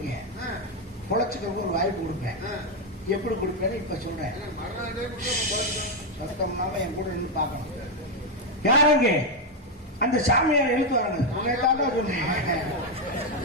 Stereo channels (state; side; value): normal; both; correlation 0.03